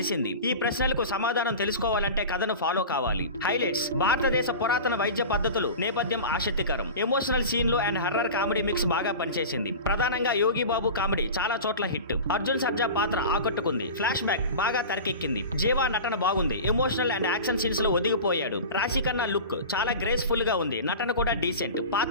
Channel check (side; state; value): both; inverted; correlation -0.32